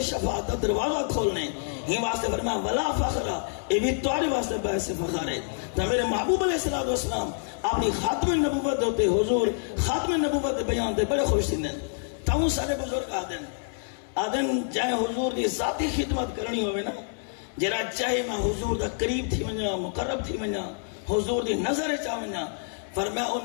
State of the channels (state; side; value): silent; right; 58 dB below the other